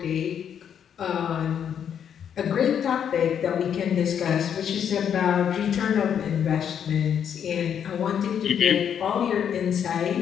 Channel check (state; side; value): quieter; right; 8.5 dB